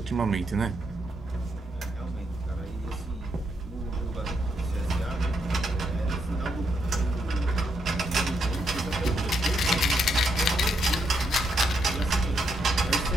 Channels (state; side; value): normal; both; correlation 0.78